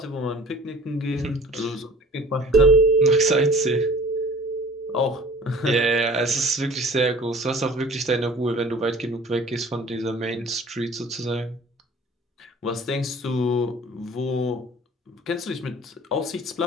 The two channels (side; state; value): both; normal; correlation 0.47